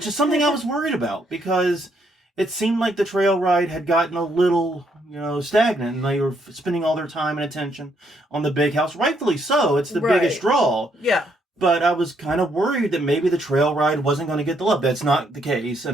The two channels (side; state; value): both; normal; correlation 0.73